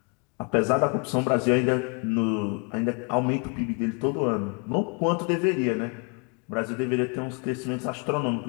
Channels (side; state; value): right; quieter; 33.7 dB